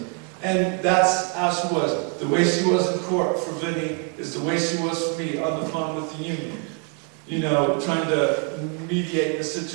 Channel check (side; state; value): left; quieter; 36.1 dB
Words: And that's how she was. The way she was in court for Vinny is the way she was for me on the phone with the union. You know, trying to mediate the